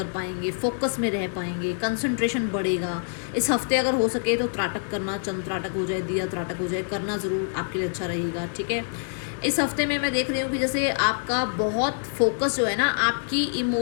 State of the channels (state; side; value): silent; right; 61 dB below the other